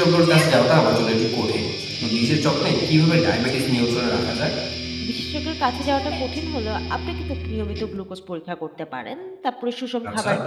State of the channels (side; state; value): both; identical; correlation 1.00